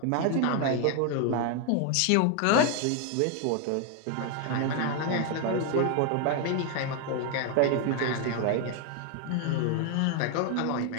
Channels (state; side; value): different; both; correlation 0.01